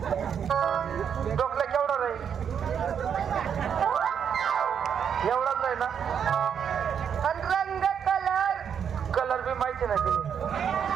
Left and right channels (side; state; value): left; quieter; 7.8 dB